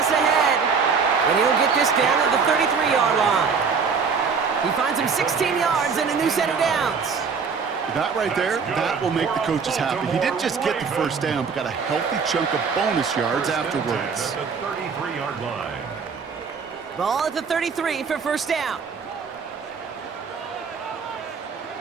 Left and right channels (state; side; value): quieter; left; 5.6 dB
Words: ahead. And he'll get this down to the 33-yard line. He finds him 16 yards and a new set of downs. That right there, that will make the coaches happy. He didn't just get the first down, but got a healthy chunk of bonus yards afterwards. At the 33-yard line. Ball at the 33 for first down.